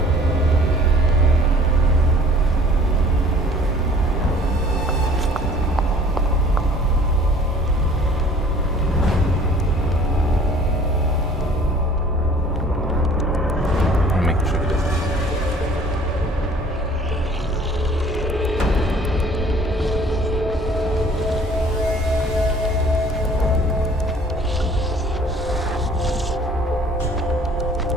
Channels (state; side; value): normal; both; correlation 0.51